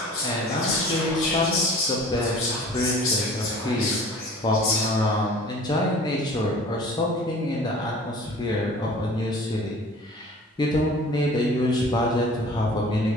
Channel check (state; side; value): normal; both; correlation 0.45